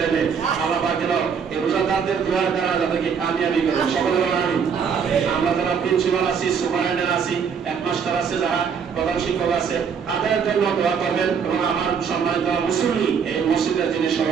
মেয়ে, আল্লাহ পাক যেন এই রোজাদারদের দোয়ার দ্বারা যাদেরকে কামিয়াবি করেন, সকলে বলেন আমিন। আমরা যারা প্রিন্সিপাল আছি, সুপারিনটেন্ডেন্ট আছি, হেডমাস্টার আছে, যারা প্রধান শিক্ষক আছে, তাদের জন্য দোয়া করবেন। এবং আমার সম্মানিত মুসল্লি, এই মসজিদের যিনি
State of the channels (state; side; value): quieter; left; 6.7 dB